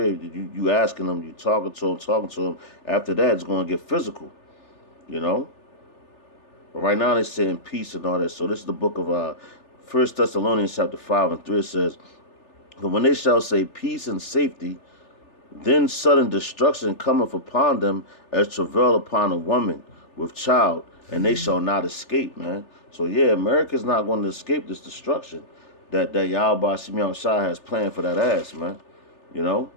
you asking them, you talking to them. After that, it's going to get physical, you know. But right now they're saying peace and all that. So this is the book of 1 Thessalonians chapter 5 and 3. It says, but when they shall say peace and safety, Then sudden destruction cometh upon them as travail upon a woman with child, and they shall not escape, man. So yeah, America's not going to escape this destruction that Yahweh Shimon Shai has planned for that ass, man. You know?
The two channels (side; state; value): right; late; 3.4 ms